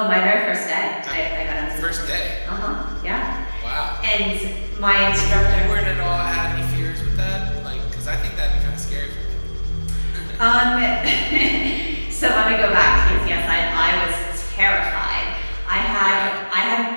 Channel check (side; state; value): both; inverted; correlation -1.00